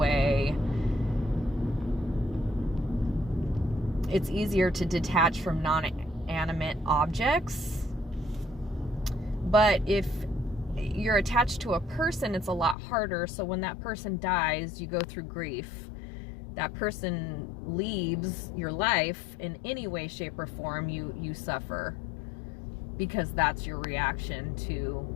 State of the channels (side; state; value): right; drops out; at 12.8 s